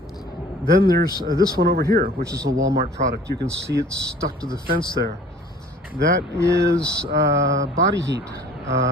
Then there's this one over here, which is a Walmart product. You can see it's stuck to the fence there. That is body heat,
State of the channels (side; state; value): both; normal; correlation 0.50